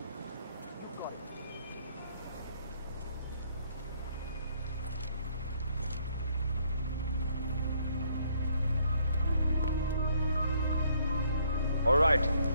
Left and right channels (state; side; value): inverted; both; correlation -0.67